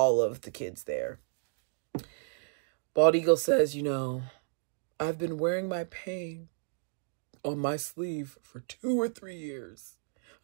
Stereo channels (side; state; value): left; silent; digital silence